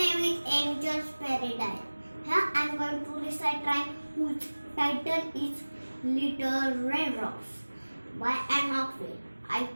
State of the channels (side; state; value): both; inverted; correlation -1.00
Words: is Angel's Paradise. Here I am going to recite rhyme whose title is Little Raindrops by an Oxley. I